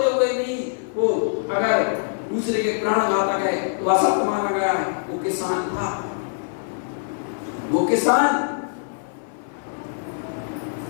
हुए भी वो अगर दूसरे के प्राणघातक है तो असत्य माना गया है। वो किसान था, वो किसान,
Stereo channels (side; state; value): right; silent; 56 dB below the other